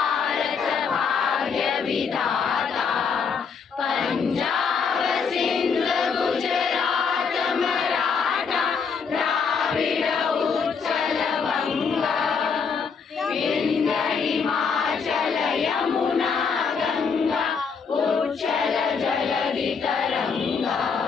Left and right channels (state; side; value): quieter; right; 5.8 dB